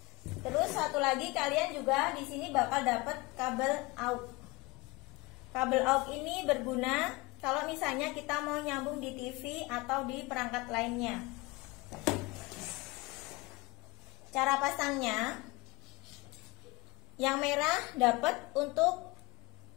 Terus satu lagi, kalian juga di sini bakal dapat kabel aux. Kabel aux ini berguna kalau misalnya kita mau nyambung di TV atau di perangkat lainnya. Cara pasangnya, yang merah dapat untuk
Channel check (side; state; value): right; quieter; 23.9 dB